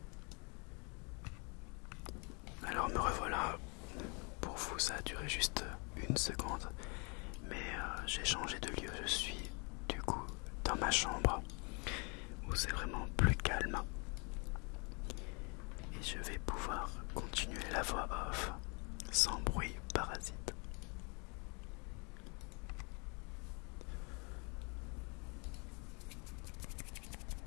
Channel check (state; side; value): quieter; right; 33.4 dB